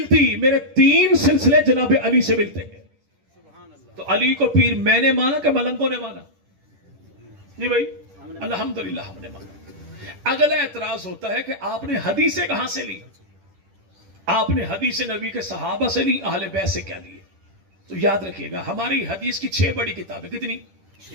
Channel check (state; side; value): late; left; 10 ms